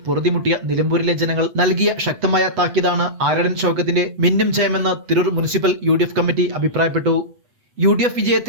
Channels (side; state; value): left; late; 8.1 ms